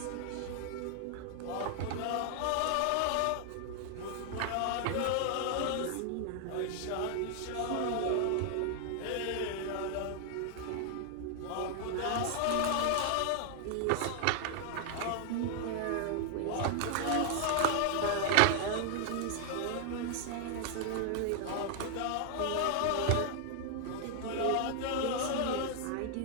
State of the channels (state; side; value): different; both; correlation 0.00